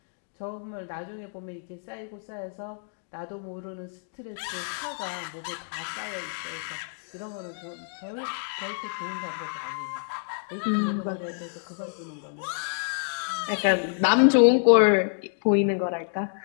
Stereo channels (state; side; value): silent; right; digital silence